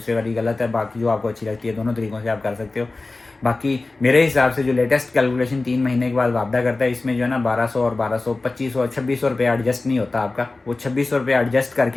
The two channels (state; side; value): quieter; right; 3.3 dB